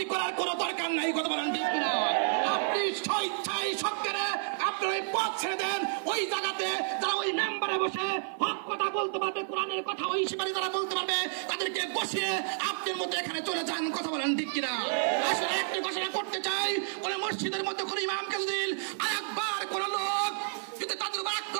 করার কোনো দরকার নাই। কথা বলেন ঠিক কিনা? আপনি স্বেচ্ছায় সরকারে আপনার ওই পথ ছেড়ে দেন। ওই জায়গাতে যারা ওই মেম্বারে বসে হক কথা বলতে পারবে, কোরআনের কথা ওই শিকারী যারা বলতে পারবে, তাদেরকে বসিয়ে আপনার মধ্যে এখানে চলে যান। কথা বলেন ঠিক কিনা? আসলে একটি ঘোষণা করতে চাই, কোন মসজিদের মধ্যে কোন ইমামকে যদি আরেকবার কোন লোক যদি তাদের উপর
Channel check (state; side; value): silent; left; 57 dB below the other